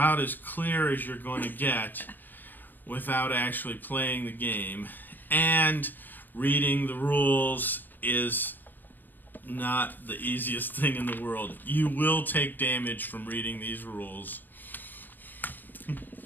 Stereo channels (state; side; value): late; right; 0.091 ms